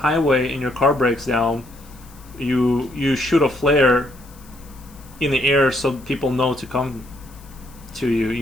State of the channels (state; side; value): noise; left; hiss, 25 dB below the sound